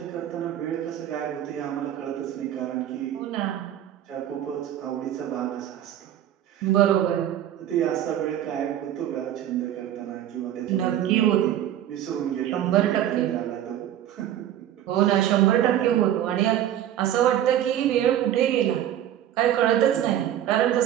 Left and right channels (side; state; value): left; quieter; 11.4 dB